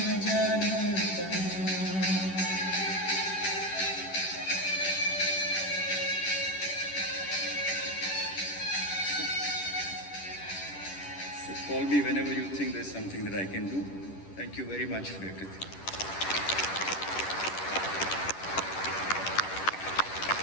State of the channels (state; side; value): late; right; 10 ms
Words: जाना कहाँ. Call me whenever you think there's something that I can do. Thank you very much for everything.